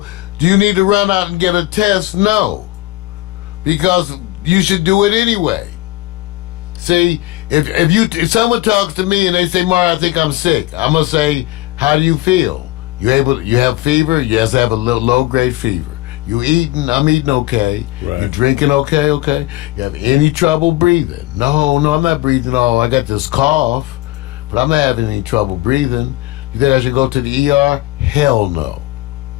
do you need to run out and get a test? No, because you should do it anyway. See, if someone talks to me and they say, "Mar, I think I'm sick," I'm gonna say, "How do you feel? You have fever?" Yes, I have a little low-grade fever. You eating? I'm eating okay. Right. You drinking okay? Okay. You have any trouble breathing? No, I'm not breathing. Oh, I got this cough, but I'm not having any trouble breathing. You think I should go to the ER? Hell no.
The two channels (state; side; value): quieter; right; 18.4 dB